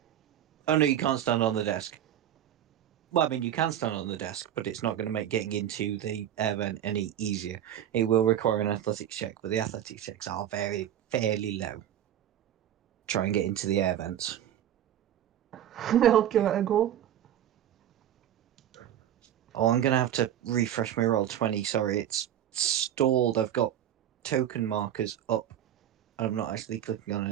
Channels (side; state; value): left; quieter; 11.0 dB